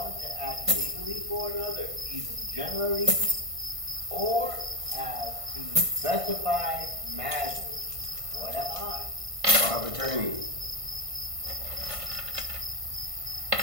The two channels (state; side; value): late; left; 1.5 ms